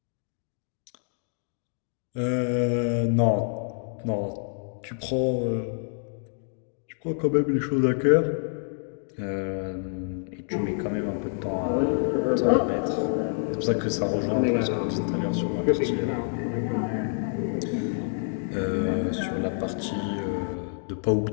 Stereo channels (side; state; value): right; silent; digital silence